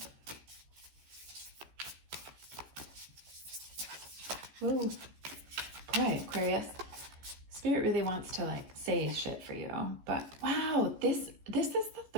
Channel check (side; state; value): left; late; 14 ms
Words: Whoa, boy, Aquarius. Spirit really wants to like say shit for you, but wow, this is the